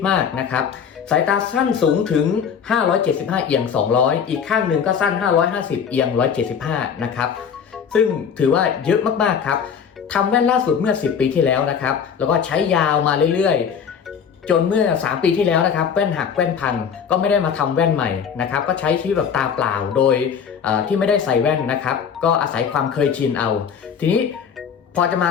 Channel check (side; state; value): right; quieter; 7.2 dB